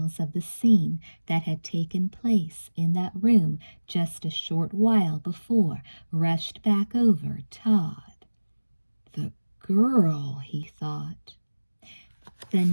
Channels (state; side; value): inverted; both; correlation -1.00